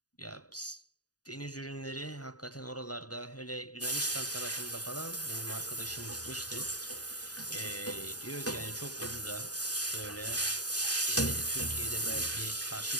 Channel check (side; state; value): right; late; 0.68 ms